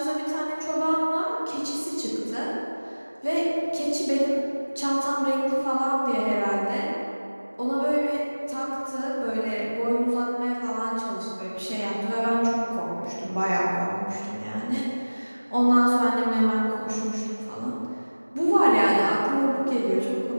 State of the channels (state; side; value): inverted; both; correlation -1.00